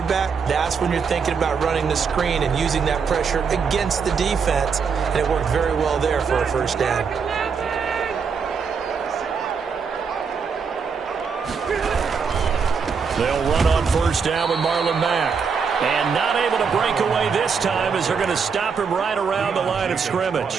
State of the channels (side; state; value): left; quieter; 5.9 dB